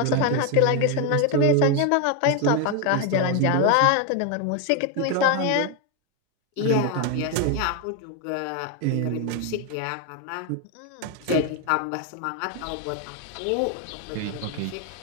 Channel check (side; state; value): both; different; correlation 0.01